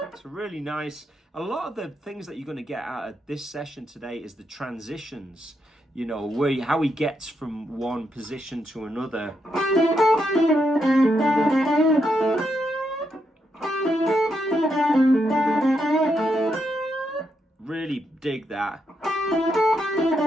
it's really nice. A lot of the things that you're going to get out of this session today is the transitions, how he gets from one position to another. Really dig that.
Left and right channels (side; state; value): both; normal; correlation 0.81